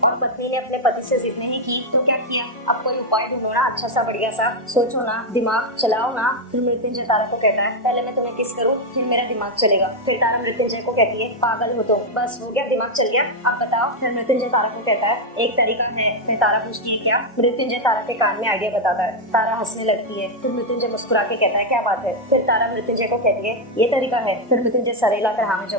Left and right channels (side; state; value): both; normal; correlation 0.02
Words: और पत्नी ने अपने पति से जिद नहीं की तो क्या किया, अब कोई उपाय ढूंढो ना, अच्छा सा बढ़िया सा सोचो ना, दिमाग चलाओ ना। फिर मृत्युंजय तारा को कहता है पहले मैं तुम्हें किस करूँ फिर मेरा दिमाग चलेगा। फिर तारा मृत्युंजय को कहती है पागल हो तुम, बस हो गया दिमाग चल गया, अब बताओ। फिर मृत्युंजय तारा को कहता है एक तरीका है। फिर तारा पूछती है क्या। मृत्युंजय तारा के कान में आइडिया बताता है। तारा हंसने लगती है। फिर मृत्युंजय मुस्कुरा के कहता है क्या बात है। फिर तारा मृत्युंजय को कहती है ये तरीका है। फिर मृत्युंजय सरेला कर हाँ में